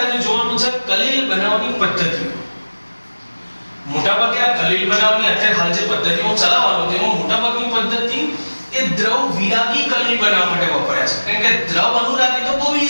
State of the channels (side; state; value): both; inverted; correlation -1.00